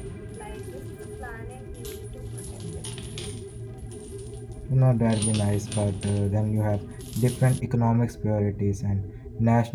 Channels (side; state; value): both; identical; correlation 1.00